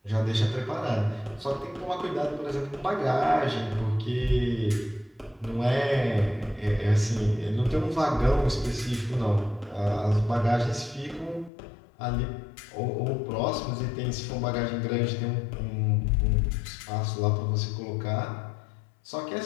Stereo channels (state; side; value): drops out; right; at 11.5 s